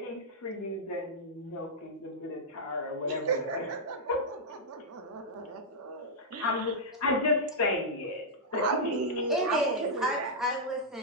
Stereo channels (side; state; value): both; normal; correlation -0.08